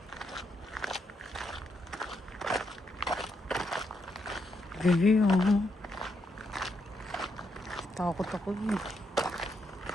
Baby, oh. Takot ako eh.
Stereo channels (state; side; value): normal; both; correlation 0.79